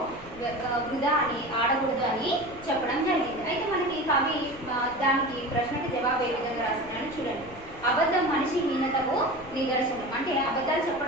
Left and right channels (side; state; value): left; noise; rumble, 18 dB below the sound